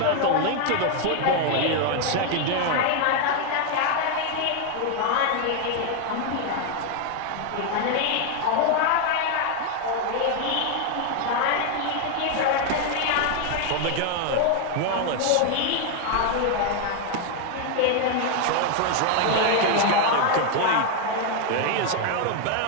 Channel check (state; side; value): different; both; correlation 0.01